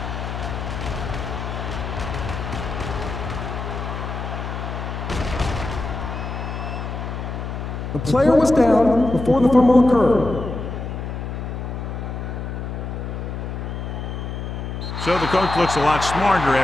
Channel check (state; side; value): noise; left; hum, 5 dB below the sound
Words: The player was down before the fumble occurred. So the coach looks a lot smarter